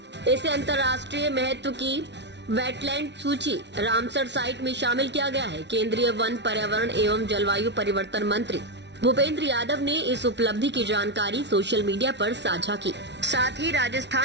अंतर्राष्ट्रीय महत्व की वेटलैंड सूची रामसर साइट में शामिल किया गया है। केंद्रीय वन, पर्यावरण एवं जलवायु परिवर्तन मंत्री भूपेंद्र यादव ने इस उपलब्धि की जानकारी सोशल मीडिया पर साझा की। साथ ही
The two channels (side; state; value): left; late; 0.51 ms